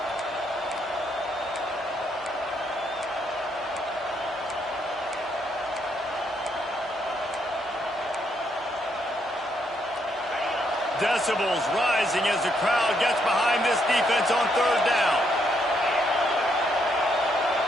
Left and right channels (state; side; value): normal; both; correlation 0.75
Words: Decibels rising as the crowd gets behind this defense on 3rd down.